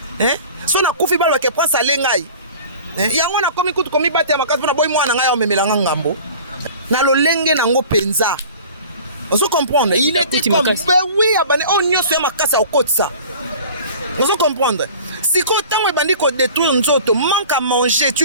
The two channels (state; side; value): inverted; both; correlation -0.43